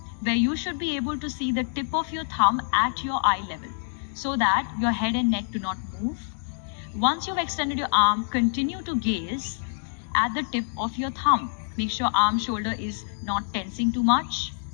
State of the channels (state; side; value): silent; right; digital silence